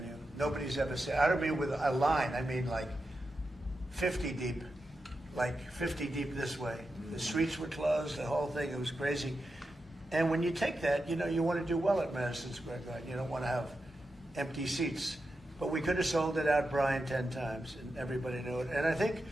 Nobody's ever said, I don't mean with a line, I mean like 50 deep, this way. The streets were closed, the whole thing, it was crazy. And when you take that, you want to do well at Madison Square Garden. You don't want to have empty seats. But we could have sold it out, Brian, 10 times, and everybody knew it. And I think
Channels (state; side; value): normal; both; correlation 0.89